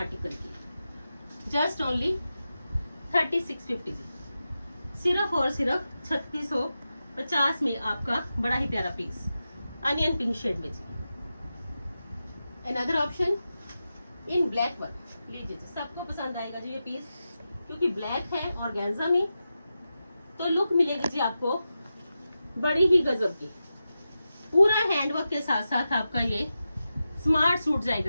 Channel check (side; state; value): both; inverted; correlation -0.91